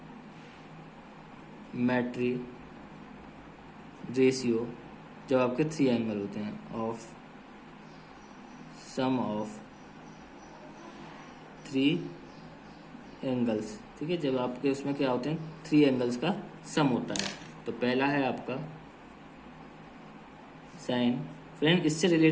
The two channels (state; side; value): identical; both; correlation 1.00